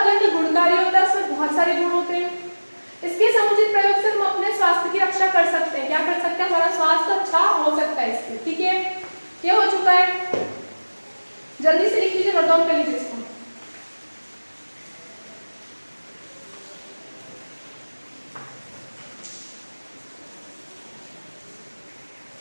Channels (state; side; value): inverted; both; correlation -1.00